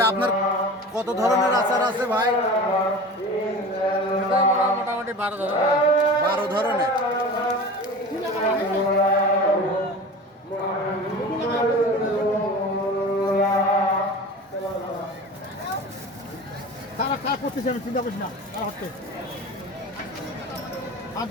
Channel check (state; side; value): normal; both; correlation 0.35